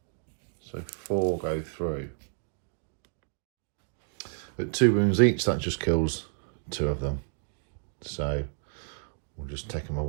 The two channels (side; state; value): left; silent; 58 dB below the other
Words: So 4 go through. At 2 wounds each, that just kills 2 of them. So just take them